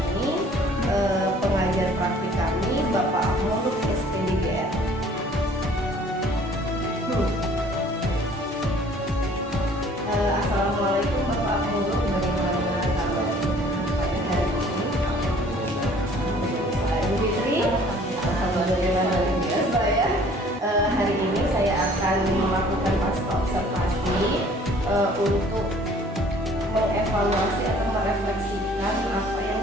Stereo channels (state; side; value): normal; both; correlation 0.54